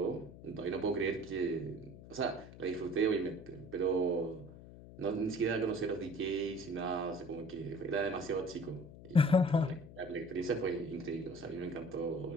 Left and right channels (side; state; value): left; noise; hum, 16 dB below the sound